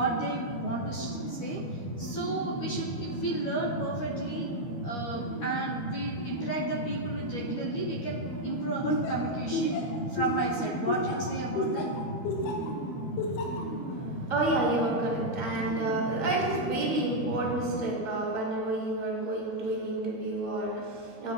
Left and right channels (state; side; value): late; right; 13 ms